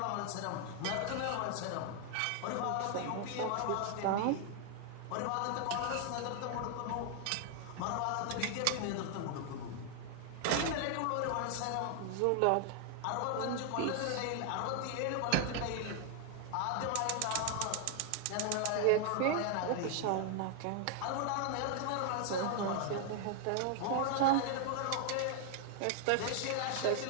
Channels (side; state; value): both; different; correlation 0.00